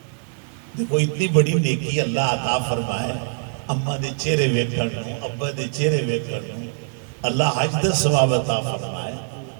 دیکھو اتنی بڑی نیکی اللہ عطا فرمائے، اماں دے چہرے ویکھن نوں، ابا دے چہرے ویکھن نوں، اللہ حج دا ثواب عطا فرمائے،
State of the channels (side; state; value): left; silent; digital silence